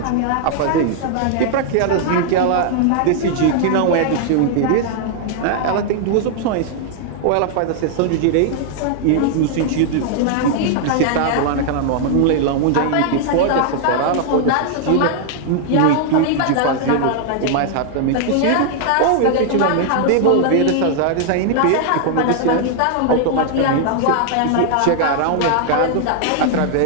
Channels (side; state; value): both; different; correlation 0.00